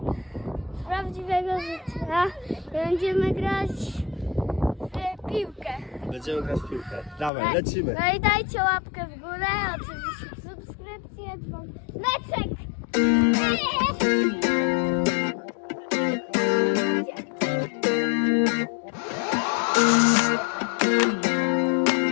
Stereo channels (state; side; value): drops out; right; at 7.3 s